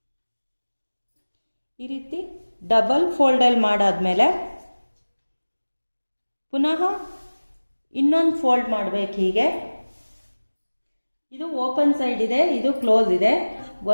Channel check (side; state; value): both; inverted; correlation -1.00